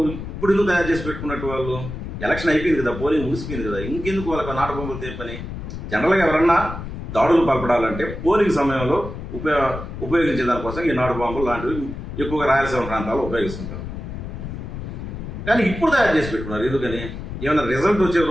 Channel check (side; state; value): left; noise; rumble, 8 dB below the sound